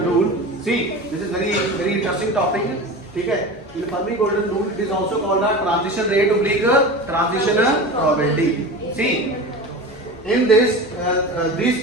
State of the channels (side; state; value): both; normal; correlation 0.30